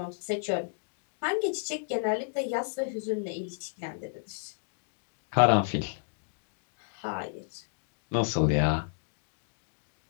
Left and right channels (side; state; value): right; silent; digital silence